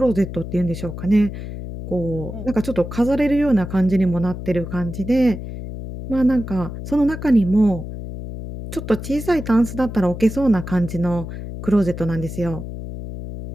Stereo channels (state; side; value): noise; left; hum, 9 dB below the sound